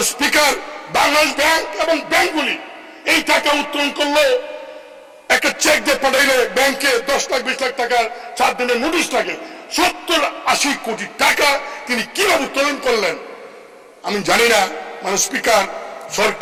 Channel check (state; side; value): identical; both; correlation 1.00